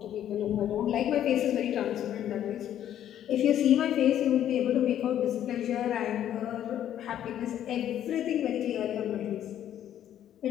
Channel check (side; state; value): right; quieter; 10.9 dB